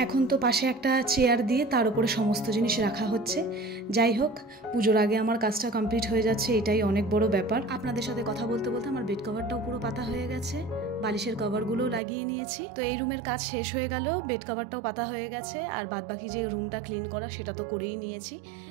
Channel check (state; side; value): drops out; left; at 12.0 s